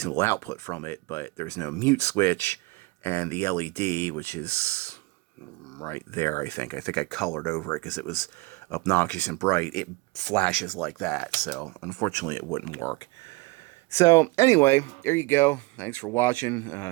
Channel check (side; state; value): left; quieter; 23.8 dB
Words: output from it, but there's no mute switch, and the LED, which is right there, I think I colored over it because it was obnoxious and bright. It flashes like that, so unfortunately it wouldn't work. So anyway, there you go. Thanks for watching.